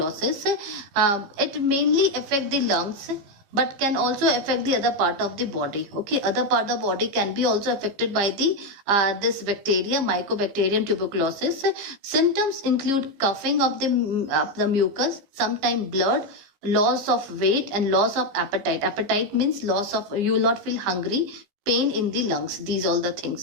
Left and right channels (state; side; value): late; left; 15 ms